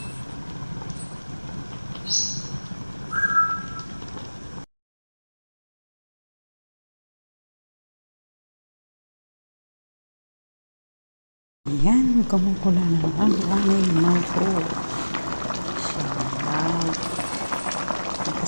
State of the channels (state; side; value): inverted; both; correlation -1.00